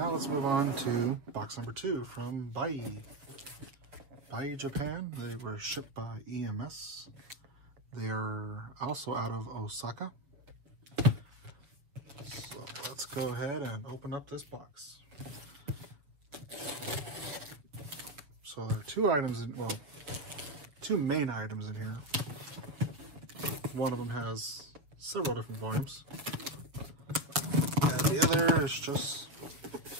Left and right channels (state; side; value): late; left; 6.7 ms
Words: let's move on to box number 2 from Buyee. Buyee, Japan. They were shipped by EMS. They are also out of Osaka. So let's go ahead and open up this box. So there are 2 items in, well, 2 main items in here. One of them has several different volumes. And the other is just